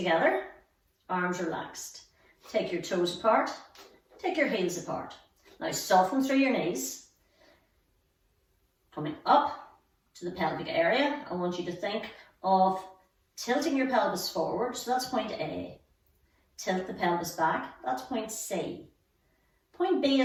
arms relaxed. Take your toes apart, take your heels apart. Now soften through your knees. Coming up to the pelvic area, I want you to think of tilting your pelvis forward, so that's point A. Tilt the pelvis back, that's point C. Point B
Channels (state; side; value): identical; both; correlation 1.00